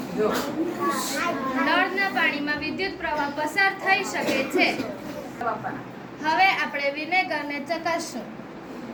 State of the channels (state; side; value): identical; both; correlation 1.00